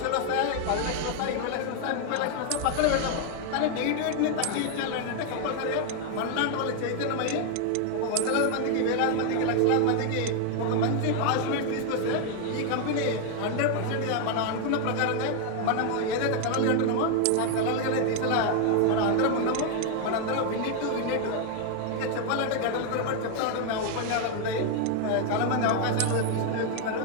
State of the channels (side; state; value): both; different; correlation 0.00